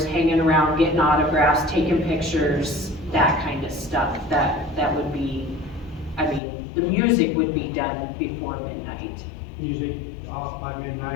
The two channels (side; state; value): right; drops out; at 6.4 s